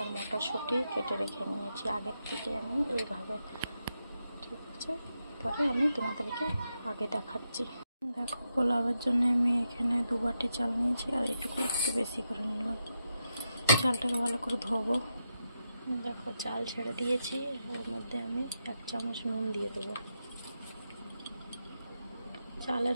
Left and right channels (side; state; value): both; inverted; correlation -0.86